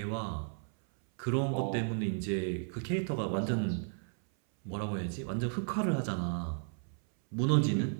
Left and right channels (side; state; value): left; silent; 55 dB below the other